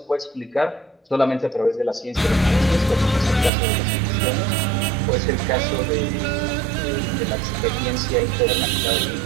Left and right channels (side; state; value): left; drops out; at 3.5 s